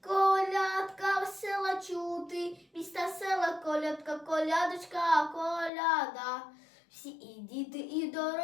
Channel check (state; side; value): drops out; right; at 5.7 s